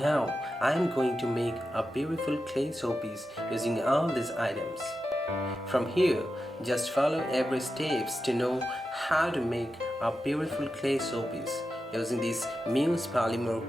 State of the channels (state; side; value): normal; both; correlation 0.90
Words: I am going to make a beautiful clay showpiece using all these items. From here, just follow every steps to know how to make a beautiful clay showpiece using this Muse